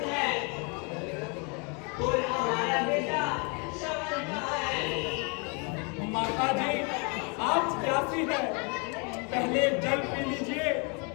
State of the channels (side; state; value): right; quieter; 33.7 dB